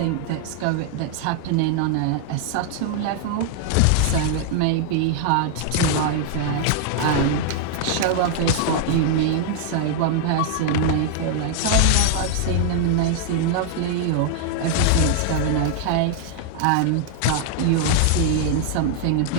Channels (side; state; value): both; different; correlation 0.00